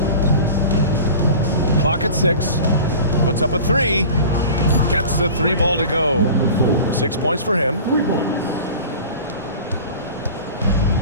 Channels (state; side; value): inverted; both; correlation -0.38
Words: Clock at 6. Puts up a 3. Gets the 3 ball to go. 6 points for him.